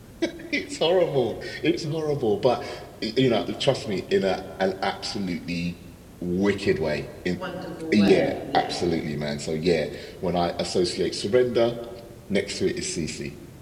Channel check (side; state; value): both; identical; correlation 1.00